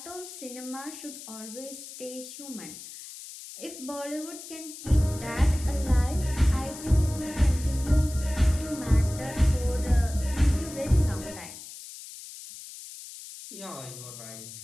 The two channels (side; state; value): left; noise; hiss, 13 dB below the sound